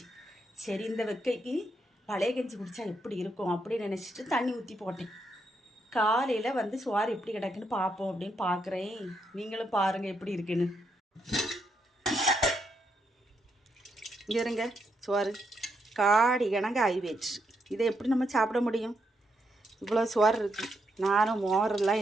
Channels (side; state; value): both; normal; correlation 0.79